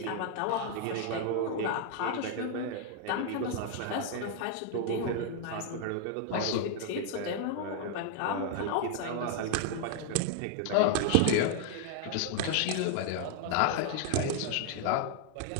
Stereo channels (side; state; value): both; different; correlation 0.00